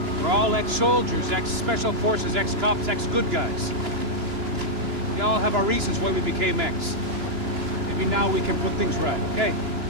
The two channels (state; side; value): late; left; 2.9 ms